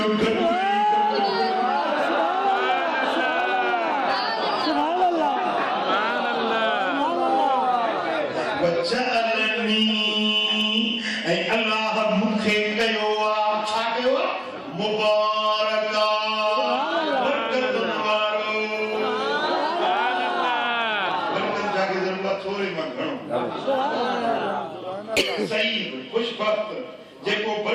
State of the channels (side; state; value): both; identical; correlation 1.00